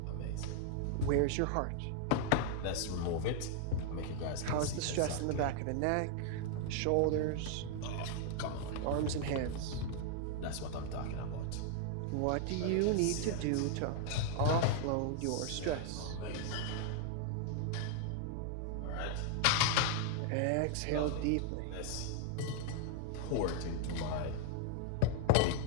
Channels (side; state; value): both; different; correlation 0.00